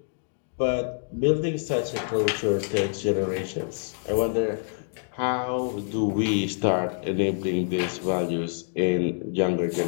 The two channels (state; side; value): silent; right; digital silence